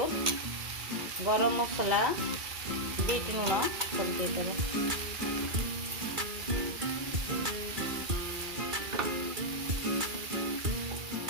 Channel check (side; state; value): left; late; 2.3 ms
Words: गरम मसला बीट लुण सब दे देबे